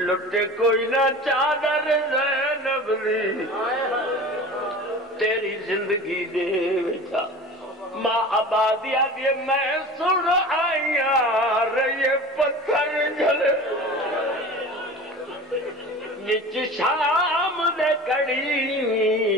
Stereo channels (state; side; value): normal; both; correlation 0.37